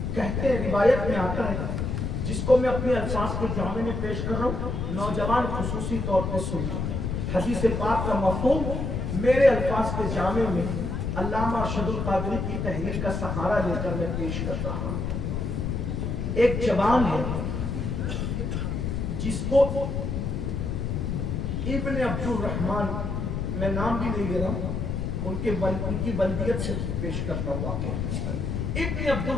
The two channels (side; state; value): left; noise; rumble, 2 dB below the sound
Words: कहते हैं, रिवायत में आता है, जिसको मैं अपने अल्फाज के जामे में पेश कर रहा हूँ, नौजवान खुसूसी तौर पे सुनिए। हदीस पाक का मफहूम मेरे अल्फाज के जामे में अल्लामा अरशदुल कादरी की तहरीर का सहारा लेकर मैं पेश कर रहा हूँ। एक जवान है जिसको इब्न अब्दुल रहमान, मैं नाम भी नहीं ले रहा हूँ, उनकी बल्दियत से पेश करता हूँ वाक़या। इब्न अब्दुल